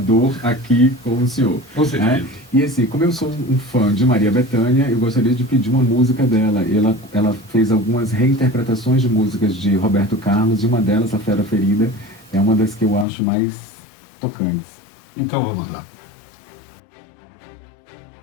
aqui com o senhor. Com certeza. E assim, como eu sou um fã de Maria Bethânia, eu gostaria de pedir uma música dela. Ela fez algumas reinterpretações de músicas de Roberto Carlos, e uma delas, A Fera Ferida, é uma das que eu acho mais tocantes. Então vamos lá.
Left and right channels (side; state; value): right; drops out; at 13.1 s